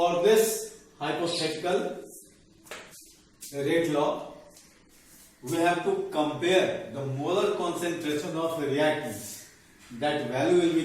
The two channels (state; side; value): identical; both; correlation 1.00